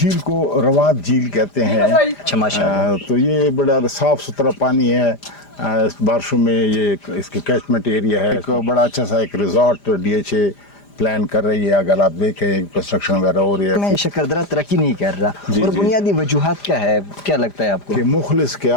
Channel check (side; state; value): right; late; 5.0 ms